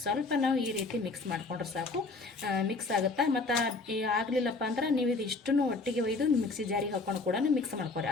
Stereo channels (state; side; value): quieter; right; 3.7 dB